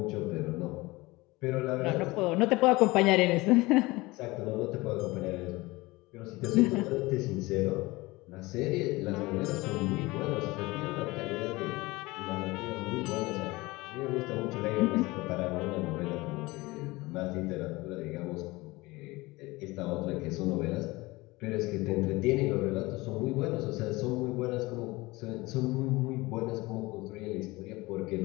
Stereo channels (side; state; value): right; quieter; 21.6 dB